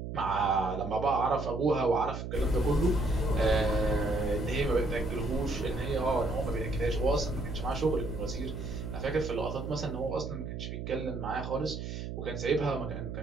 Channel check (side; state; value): right; noise; hum, 6 dB below the sound